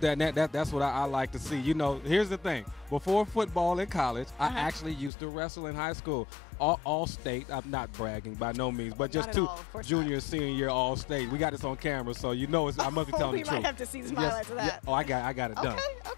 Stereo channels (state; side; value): drops out; right; at 5.1 s